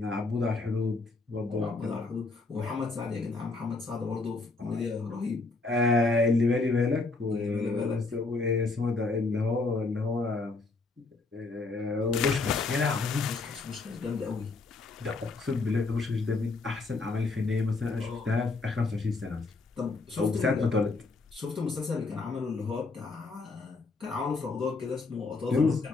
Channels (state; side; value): quieter; right; 3.7 dB